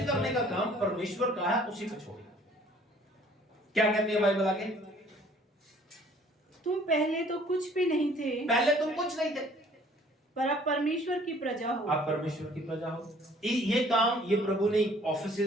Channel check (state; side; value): normal; both; correlation 0.56